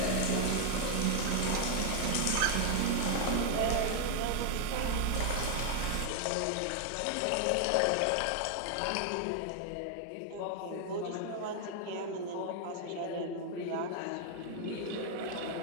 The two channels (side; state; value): both; different; correlation 0.00